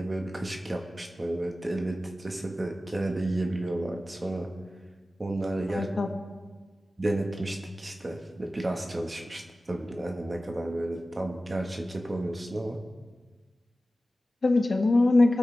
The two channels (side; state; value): both; normal; correlation 0.95